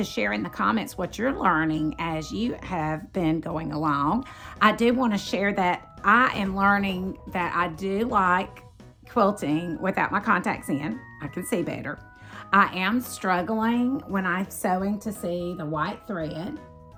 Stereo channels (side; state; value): both; identical; correlation 1.00